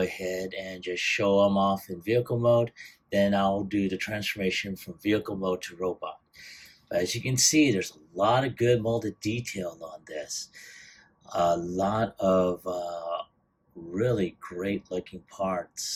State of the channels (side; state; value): both; identical; correlation 1.00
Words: and just show him off in vehicle mode. Then I'll do the transformation from vehicle mode to robot. But as you can see, there's a lot of good molded detail on this. A lot of really great looking